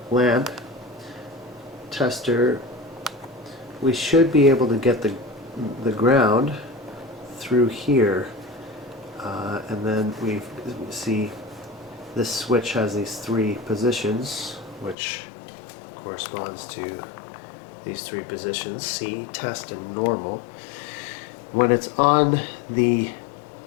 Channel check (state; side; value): drops out; right; at 15.0 s